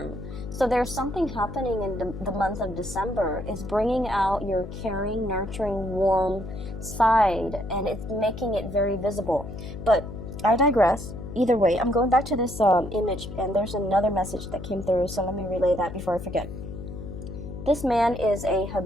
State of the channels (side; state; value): left; noise; hum, 10 dB below the sound